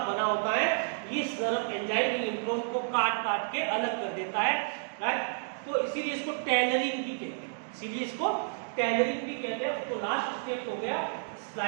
बना होता है। ये सर्व एंजाइम इंट्रॉन को काट काट के अलग कर देता है, राइट। तो इसीलिए इसको टेलरिंग भी कहते हैं, इसीलिए इसको टेलरिंग भी कहते हैं। तो लास्ट स्टेप हो गया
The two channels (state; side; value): silent; left; digital silence